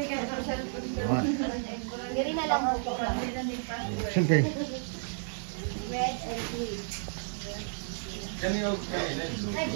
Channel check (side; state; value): left; silent; digital silence